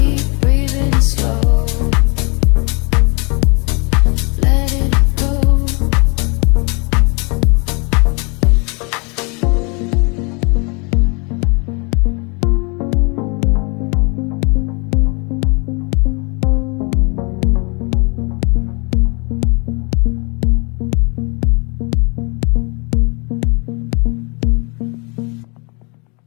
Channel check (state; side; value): quieter; right; 31.7 dB